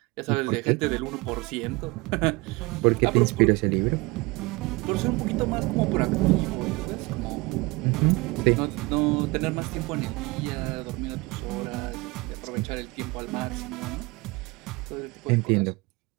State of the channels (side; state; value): left; quieter; 24.2 dB